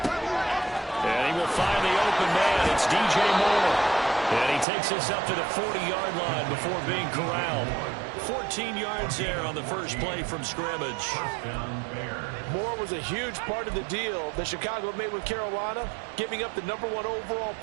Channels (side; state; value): left; drops out; at 4.7 s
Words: And he will find the open man. It's DJ Moore. And he takes this up to the 40-yard line before being corralled. 14 yards there on the first play from scrimmage. Moore was a huge part of the deal that Chicago made with Carolina, giving up the #1 overall